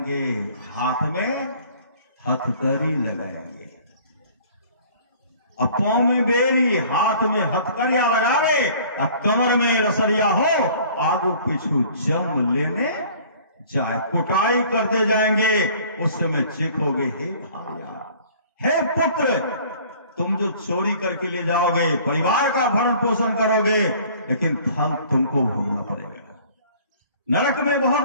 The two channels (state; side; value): inverted; both; correlation -0.51